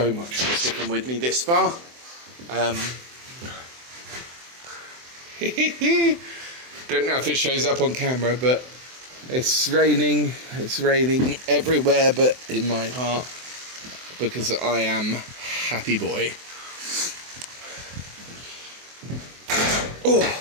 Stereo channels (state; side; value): late; left; 24 ms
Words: much for sticking with me this far. Don't know if it shows up on camera, but it's raining everywhere but in my heart, because I am happy boy.